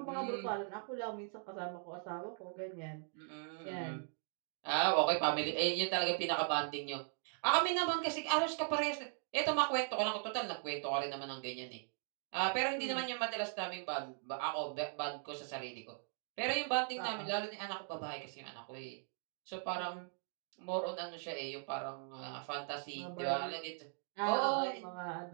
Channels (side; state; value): left; silent; 52 dB below the other